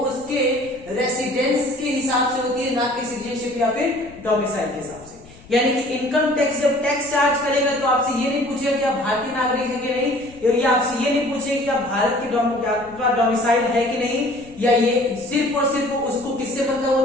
उसके रेसिडेंस के हिसाब से होती है, ना कि सिटीजनशिप या फिर डोमिसाइल के हिसाब से। यानी कि इनकम टैक्स जब टैक्स चार्ज करेगा तो आपसे ये नहीं पूछेगा कि आप भारतीय नागरिक है कि नहीं, या आपसे ये नहीं पूछेगा कि आप भारत के डोमिसाइल है कि नहीं, या ये सिर्फ और सिर्फ उसको किससे मतलब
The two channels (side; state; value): left; noise; rumble, 23 dB below the sound